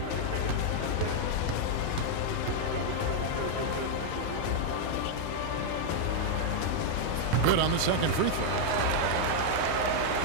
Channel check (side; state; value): both; different; correlation 0.00